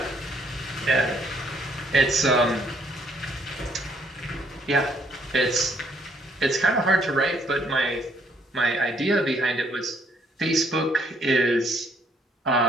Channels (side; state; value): both; normal; correlation 0.68